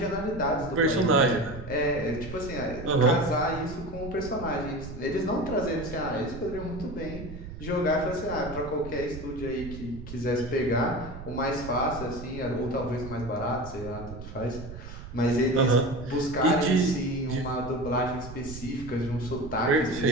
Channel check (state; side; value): noise; right; rumble, 11 dB below the sound